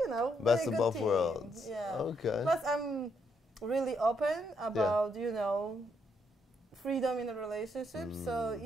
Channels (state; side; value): normal; both; correlation 0.75